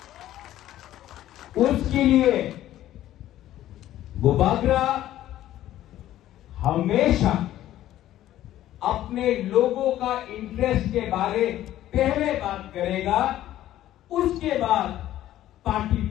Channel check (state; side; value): quieter; right; 13.4 dB